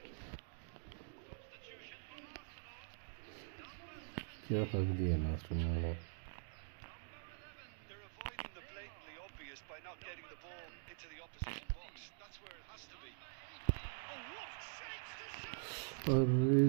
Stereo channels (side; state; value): left; silent; digital silence